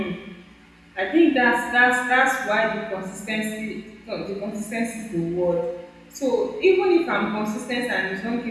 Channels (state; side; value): identical; both; correlation 1.00